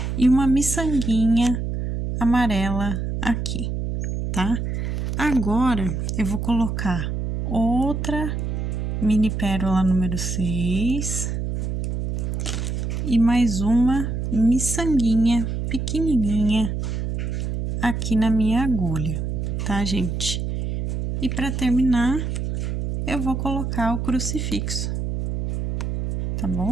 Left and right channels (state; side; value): noise; right; hum, 2 dB below the sound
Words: e uma miçanguinha amarela aqui, tá? Agora, eu vou colocar outra mini pérola número 6 e mais uma miçanguinha pequenininha aqui na minha agulha, tá, gente? E para terminar, eu vou colocar o crucifixo, tá